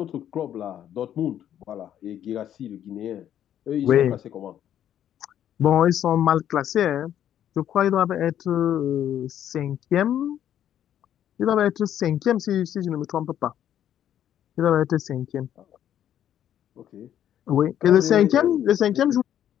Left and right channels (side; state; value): right; quieter; 10.5 dB